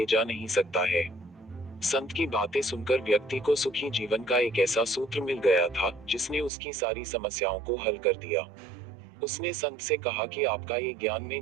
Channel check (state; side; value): drops out; left; at 6.5 s